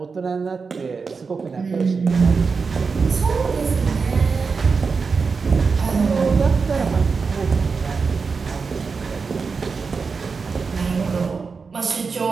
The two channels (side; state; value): left; quieter; 5.0 dB